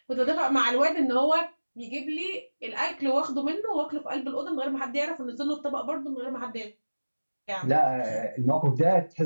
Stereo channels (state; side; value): inverted; both; correlation -1.00